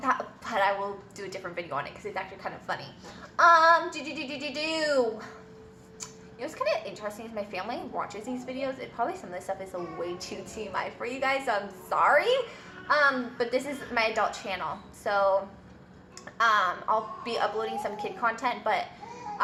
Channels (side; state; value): both; identical; correlation 1.00